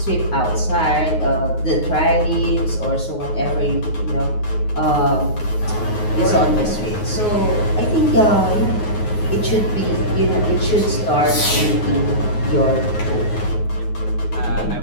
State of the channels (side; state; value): right; late; 9.5 ms